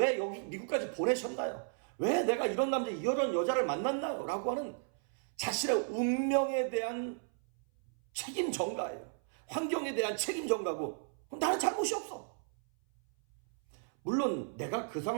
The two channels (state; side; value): silent; left; 55 dB below the other